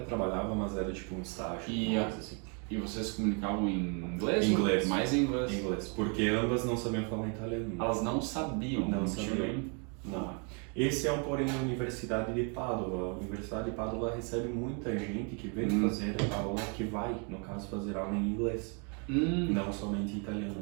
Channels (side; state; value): left; quieter; 37.5 dB